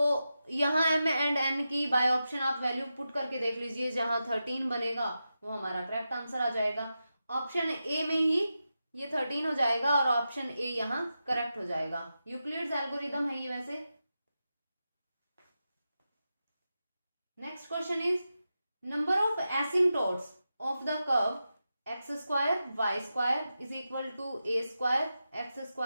यहाँ m एंड n की बाय ऑप्शन आप वैल्यू पुट करके देख लीजिए, जहां 13 बनेगा वो हमारा करेक्ट आंसर आ जाएगा, ऑप्शन ए में ही ये 13 हो जाएगा और ऑप्शन ए यहाँ करेक्ट हो जाएगा। यूक्लिड्स एल्गोरिदम है ये वैसे। Next question is number of asymptotes of the curve x square y square is equal to a square x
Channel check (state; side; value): inverted; both; correlation -0.90